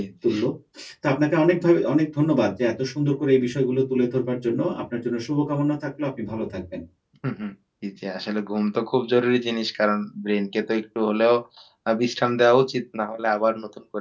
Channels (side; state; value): both; identical; correlation 1.00